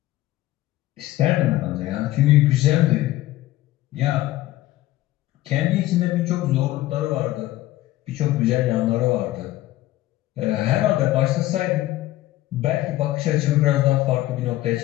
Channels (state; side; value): quieter; right; 15.9 dB